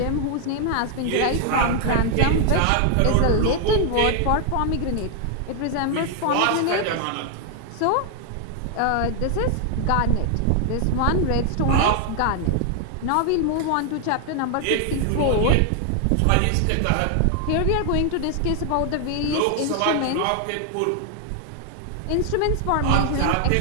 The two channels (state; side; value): different; both; correlation 0.00